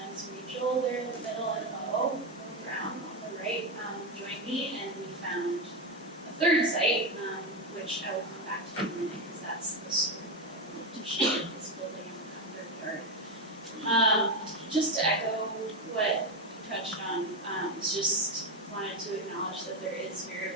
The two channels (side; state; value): both; normal; correlation 0.11